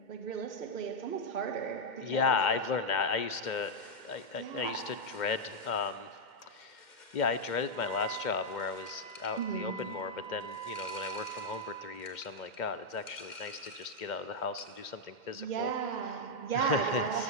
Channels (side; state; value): right; late; 2.1 ms